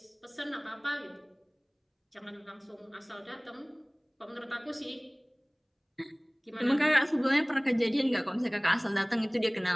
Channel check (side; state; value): both; identical; correlation 1.00